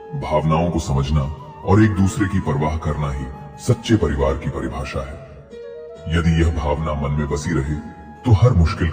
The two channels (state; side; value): identical; both; correlation 1.00